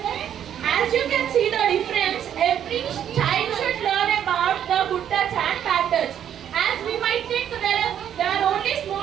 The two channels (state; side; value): quieter; left; 9.7 dB